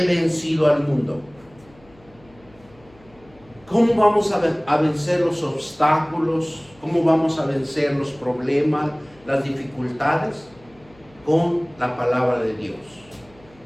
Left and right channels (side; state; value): left; noise; hum, 28 dB below the sound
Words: vencido al mundo. ¿Cómo vamos a vencer los obstáculos? ¿Cómo vamos a vencer los problemas, las dificultades? Con la palabra de Dios.